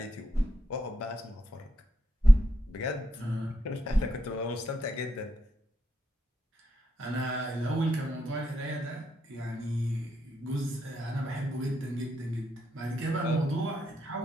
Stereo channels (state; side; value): normal; both; correlation 0.82